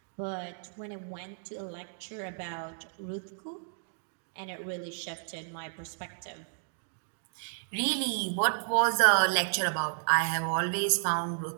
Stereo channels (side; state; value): left; silent; digital silence